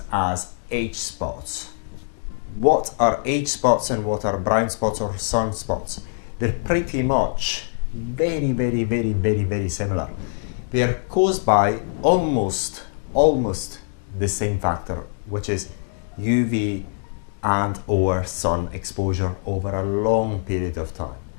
as age spots. What are age spots and what are brown spots or sunspots? They're pretty much very similar. They are caused by almost the same factor, which is UV and or sun exposure over a long period of time.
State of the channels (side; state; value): right; silent; digital silence